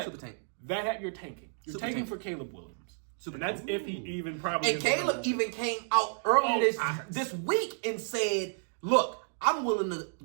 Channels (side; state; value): left; silent; digital silence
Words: Super tank. that you're tanking. You're Super tanking tank. for Caleb Williams. Super And that's if he even probably. And Caleb even came out earlier this week and said, "Look, I'm willing to